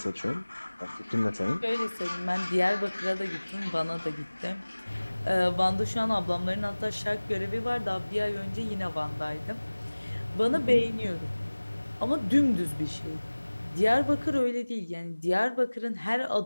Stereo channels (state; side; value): inverted; both; correlation -1.00